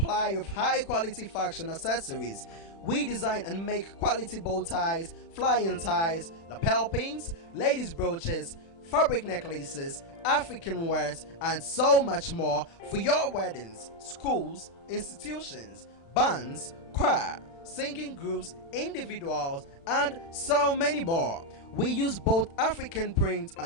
of high-quality fashion accessories. We design and make quality bow ties, flying ties, lapel pins, ladies' brooches, fabric necklaces, African wares, and so much more for your weddings, schools, institutions, bands, choir, singing groups, individuals, and so many more. We use both African prints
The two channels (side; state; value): right; late; 36 ms